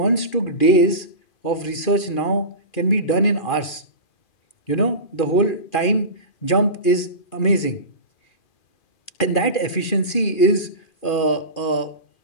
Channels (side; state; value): right; late; 2.4 ms